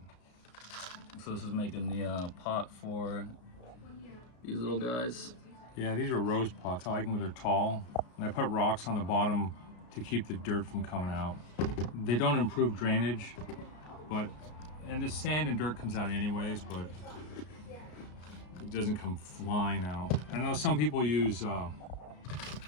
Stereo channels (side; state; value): right; late; 33 ms